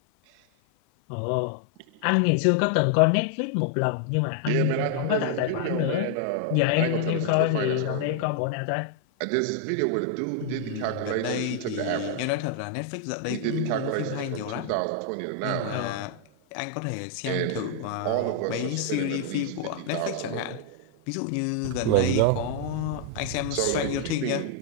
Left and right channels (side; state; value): both; different; correlation 0.00